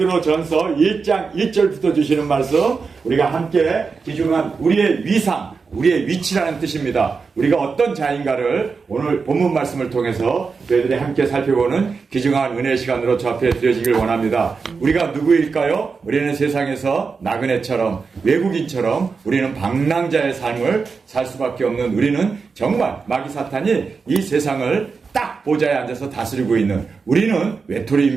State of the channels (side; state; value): left; quieter; 5.0 dB